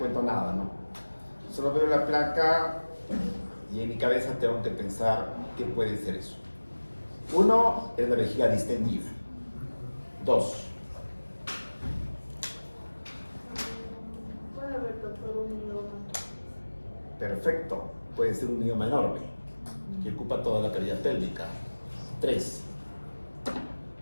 nada, ¿no? Solo veo la placa y en mi cabeza tengo que pensar qué puede ser eso. Uno es la vejiga distendida. Dos. Puede haber todo un mioma. Perfecto. Puede ser un mioma enorme que ocupa toda la cavidad pélvica. Tres.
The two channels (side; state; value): both; inverted; correlation -1.00